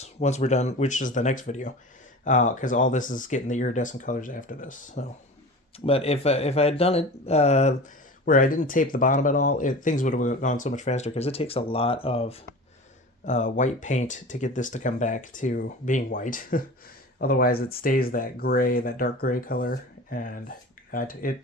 once we're done, which is the next video, because all this is getting the iridescent colors after this. So, but if I had done it where I didn't tape the bottom at all, things would have gone so much faster because it takes a lot of white paint to get this to come back to being white. Otherwise, it stays that gray, that dark gray color, and it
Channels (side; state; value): both; normal; correlation 0.35